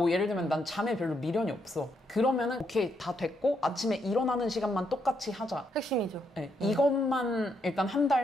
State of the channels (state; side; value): normal; both; correlation 0.77